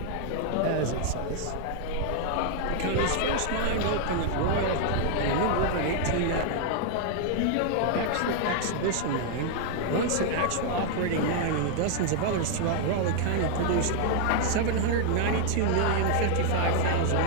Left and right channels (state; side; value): different; both; correlation 0.00